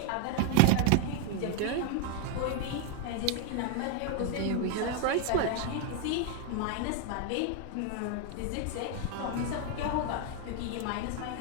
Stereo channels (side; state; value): both; different; correlation 0.00